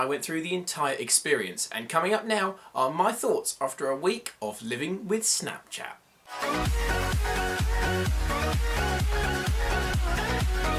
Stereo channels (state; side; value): identical; both; correlation 1.00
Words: went through the entire experience, and coming up now are my thoughts after a week of living with Snapchat.